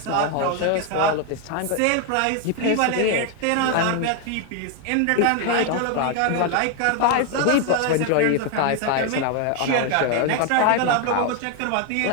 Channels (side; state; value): both; different; correlation 0.01